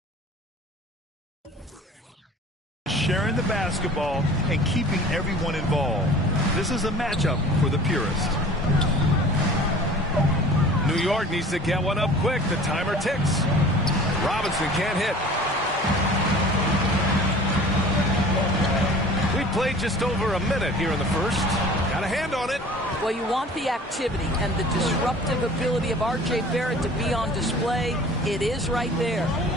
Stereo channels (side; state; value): both; normal; correlation 0.45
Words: sharing the basketball and keeping everyone involved. This is a matchup for the purist. New York needs to get one up quick. The timer ticks. Robinson can't hit. We played just over a minute here in the first. Got a hand on it. Well, you want the activity and the disruptive ability of R.J. Barrett to be on display. It is right there.